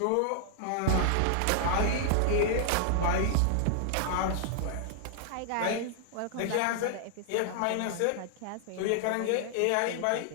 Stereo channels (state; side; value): different; both; correlation 0.00